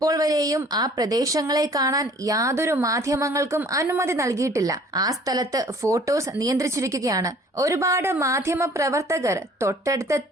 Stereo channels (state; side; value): normal; both; correlation 0.53